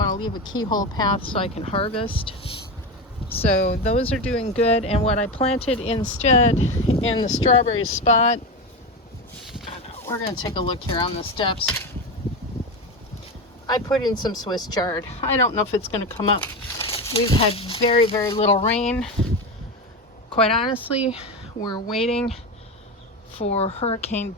to leave a keyhole path so I can harvest. So those are doing good. And what I planted instead in the strawberry spot, we're going to take a look here on the steps. I put in some Swiss chard. I don't know if it's going to come up. We've had very, very little rain. Quite honestly, we're waiting for Hurricane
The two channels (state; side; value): normal; both; correlation 0.19